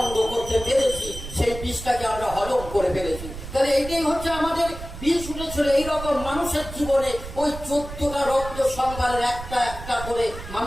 করতে পেরেছি, সেই বিষটাকে আমরা হজম করে ফেলেছি। তাহলে এইটাই হচ্ছে আমাদের বিষ উঠেছিল। এইরকম মানুষের জীবনে ওই 14টা রত্ন সম্ভারের একটা একটা করে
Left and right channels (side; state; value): right; noise; rumble, 11 dB below the sound